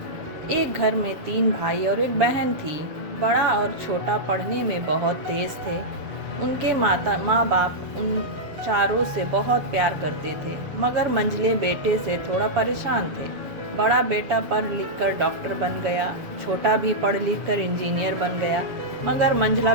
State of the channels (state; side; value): late; left; 7.1 ms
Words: एक घर में 3 भाई और एक बहन थी। बड़ा और छोटा पढ़ने में बहुत तेज थे। उनके माँ बाप उन चारों से बहुत प्यार करते थे, मगर मंझले बेटे से थोड़ा परेशान थे। बड़ा बेटा पढ़ लिख कर डॉक्टर बन गया, छोटा भी पढ़ लिख कर इंजीनियर बन गया, मगर मंझला